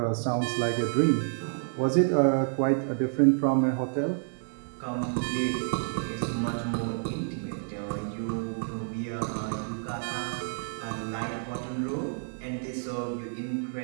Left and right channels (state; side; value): silent; left; 58 dB below the other